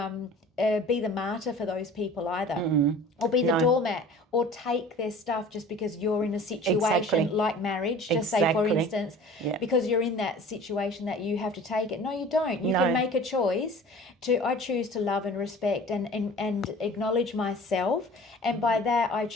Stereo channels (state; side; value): normal; both; correlation 0.44